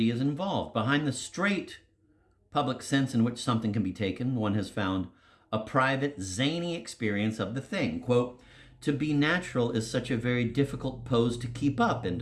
is involved. Behind the straight public sense in which something can be taken, one has found a private, zany experience of the thing. Quote, to be natural is such a very difficult pose to keep up, end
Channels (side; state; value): both; identical; correlation 1.00